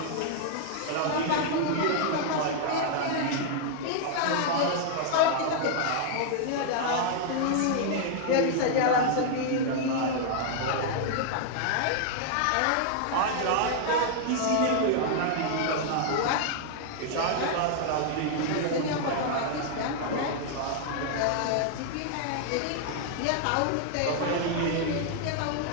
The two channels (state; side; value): different; both; correlation -0.01